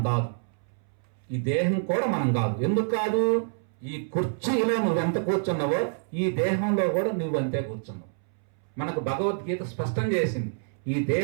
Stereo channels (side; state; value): left; silent; 60 dB below the other